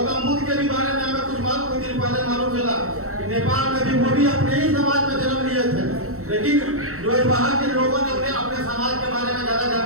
बुद्ध के भी बारे में हमें कुछ दिन पहले मालूम चला, नेपाल में भी वो भी अपने ही समाज में जन्म लिए थे, लेकिन जो बाहर के लोगों ने उन्हें अपने समाज के बारे में ज्यादा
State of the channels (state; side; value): late; left; 0.64 ms